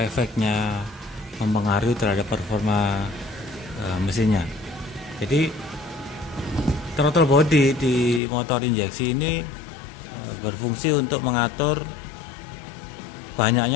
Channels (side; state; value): right; drops out; at 8.2 s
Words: efeknya mempengaruhi terhadap performa mesinnya. Jadi throttle body di motor injeksi ini berfungsi untuk mengatur